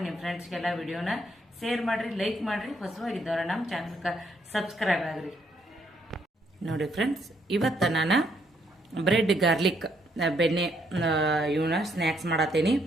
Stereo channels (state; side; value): normal; both; correlation 0.72